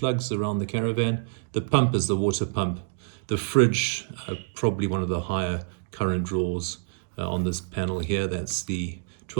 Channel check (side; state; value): left; silent; digital silence